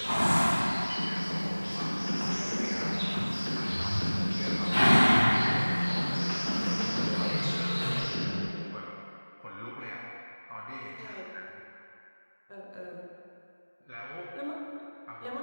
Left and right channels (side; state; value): both; inverted; correlation -1.00